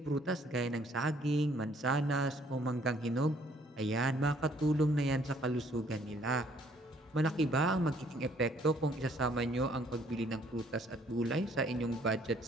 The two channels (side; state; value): both; normal; correlation 0.63